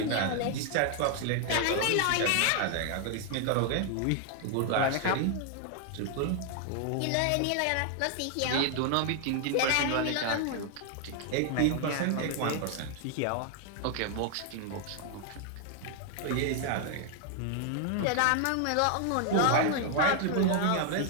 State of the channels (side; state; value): both; different; correlation 0.00